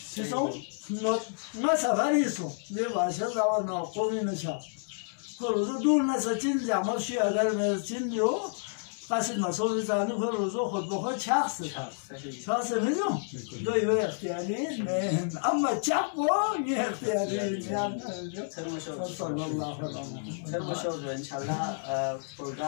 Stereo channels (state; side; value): silent; right; 57 dB below the other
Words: چی سو نه سفریسو نه باشه داور ناقومی نشا روزو دور نسا چین جمع شی اگر چین جو قصد مسئول زنی روزو خود بخود چخصه چخصه میدون دوی اختیاری نه اما چپ با یه اختیاری صلی الله علیه و انشالله